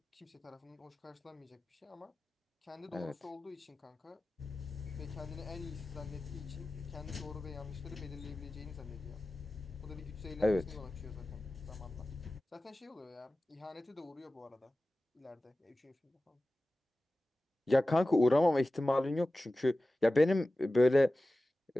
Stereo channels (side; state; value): both; normal; correlation 0.96